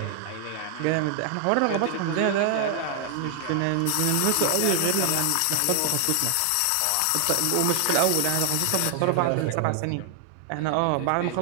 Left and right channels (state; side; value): different; both; correlation 0.00